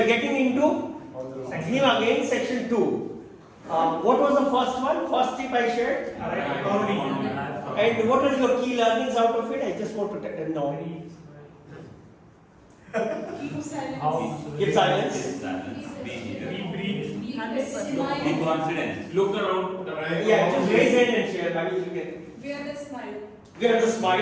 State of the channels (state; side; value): identical; both; correlation 1.00